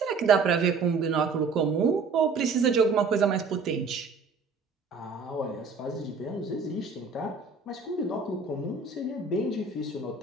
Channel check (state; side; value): quieter; left; 4.6 dB